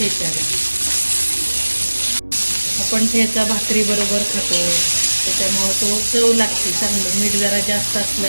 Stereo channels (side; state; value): both; inverted; correlation -1.00